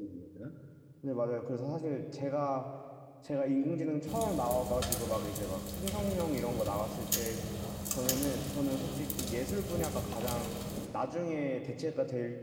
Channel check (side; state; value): both; identical; correlation 1.00